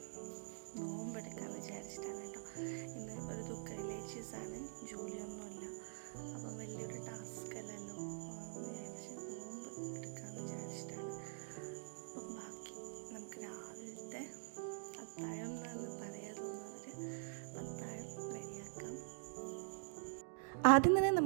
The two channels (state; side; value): silent; left; digital silence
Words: നോമ്പെടുക്കാമെന്ന് വിചാരിച്ചിട്ടാണ് കേട്ടോ. ഇന്ന് ഒരു റിലേറ്റീവ്സാണ്, ജോലിയൊന്നുമില്ല. അപ്പം വലിയൊരു ടാസ്ക് അല്ലല്ലോ വിചാരിച്ച് നോമ്പ് എടുക്കാമെന്ന് വിചാരിച്ചിട്ടാണ്. അപ്പം ബാക്കി നമുക്ക് രാവിലത്തെ അത്താഴം എന്ന് പറയാൻ തോന്നുന്നവർ അത്താഴം റെഡിയാക്കാം. ആദ്യം തന്നെ